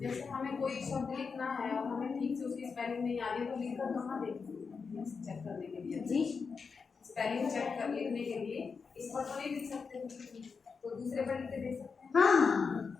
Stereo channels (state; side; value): quieter; right; 5.3 dB